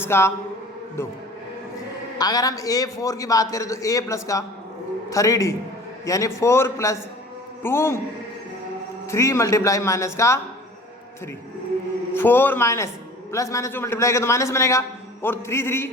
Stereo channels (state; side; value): normal; both; correlation 0.44